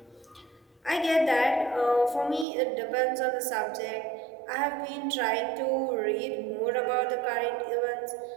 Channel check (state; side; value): drops out; left; at 2.5 s